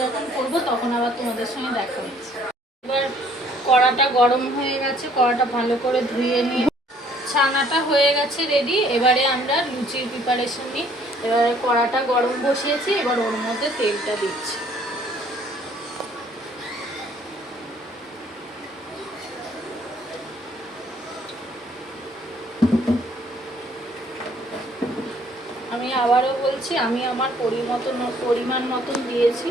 যখন করবো তখন আবার তোমাদের সঙ্গে দেখা হচ্ছে। এবার কড়াটা গরম হয়ে গেছে, কড়াটা ভালো করে ধুয়ে নিয়ে ছানাটা হয়ে গেছে রেডি। এবারে আমরা লুচির প্রিপারেশন নিই। এবারে কড়াটা গরম বসিয়েছি, এবার ওর মধ্যে তেলটা দিচ্ছি। আমি আবারও বলছি, আমি আমার পরিমাণ মতন দিয়েছি,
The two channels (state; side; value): normal; both; correlation 0.61